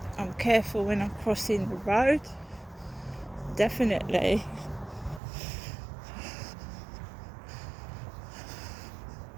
I'm careful when I'm crossing the road. Definitely.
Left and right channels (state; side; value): drops out; left; at 5.2 s